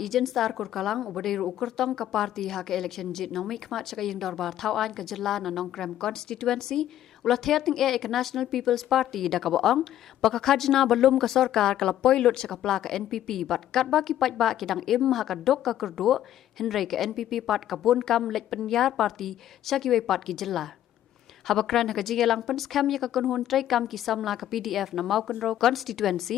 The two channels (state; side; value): quieter; right; 12.0 dB